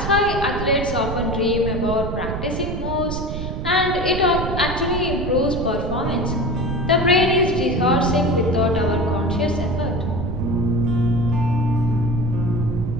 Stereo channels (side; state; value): right; noise; rumble, 4 dB below the sound